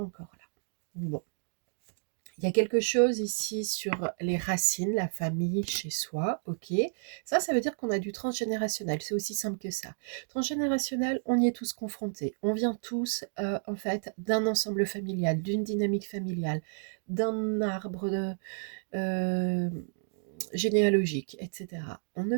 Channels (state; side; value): silent; left; digital silence